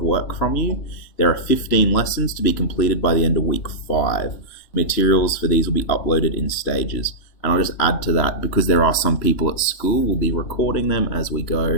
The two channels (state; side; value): late; right; 3.0 ms